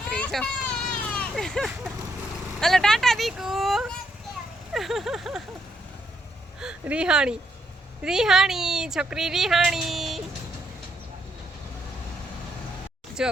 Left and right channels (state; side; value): normal; both; correlation 0.76